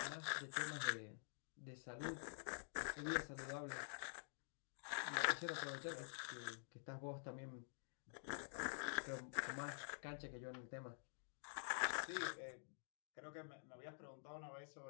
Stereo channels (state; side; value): silent; right; digital silence